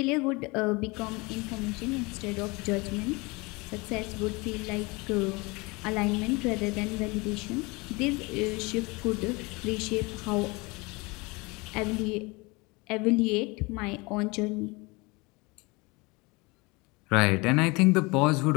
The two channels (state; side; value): quieter; right; 25.8 dB